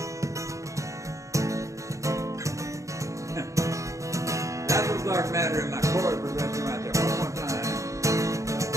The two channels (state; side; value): late; left; 0.15 ms